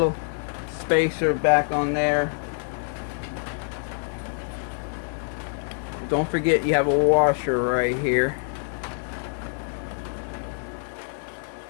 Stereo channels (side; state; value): right; silent; 61 dB below the other